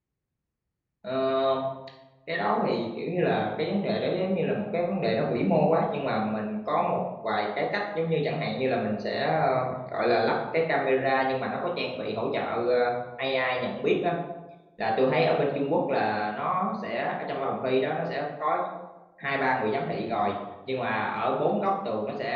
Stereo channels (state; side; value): identical; both; correlation 1.00